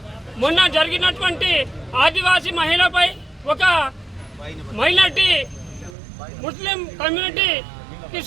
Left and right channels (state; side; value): drops out; left; at 6.0 s